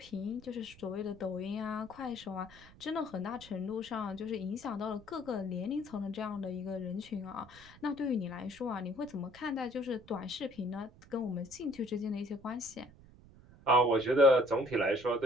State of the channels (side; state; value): right; noise; rumble, 22 dB below the sound